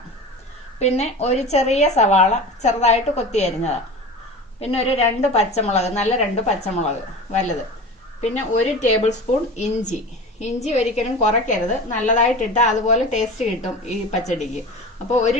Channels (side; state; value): both; normal; correlation 0.33